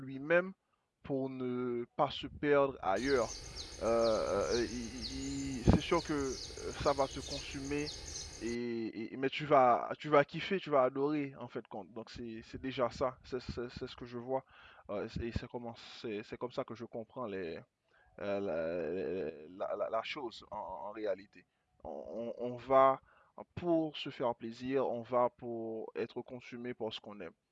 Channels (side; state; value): both; identical; correlation 1.00